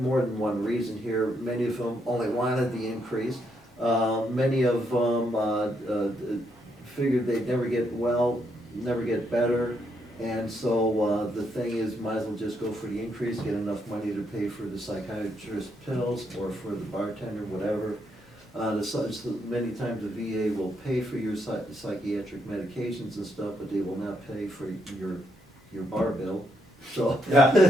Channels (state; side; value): normal; both; correlation 0.77